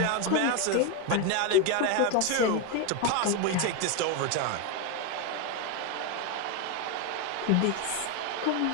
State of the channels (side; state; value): both; different; correlation 0.02